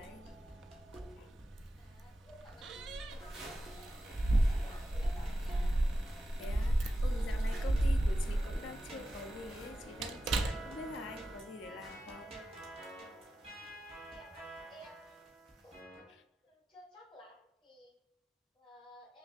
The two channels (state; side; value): normal; both; correlation 0.92